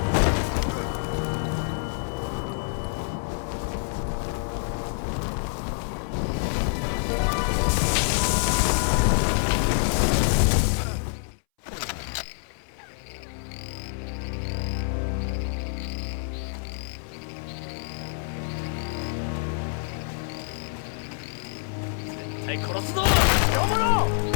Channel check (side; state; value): right; silent; 60 dB below the other